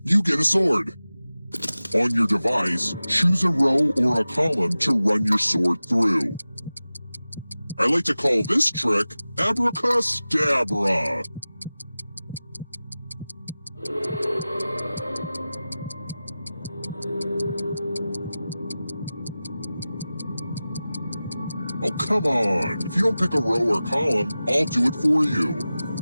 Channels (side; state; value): both; inverted; correlation -0.96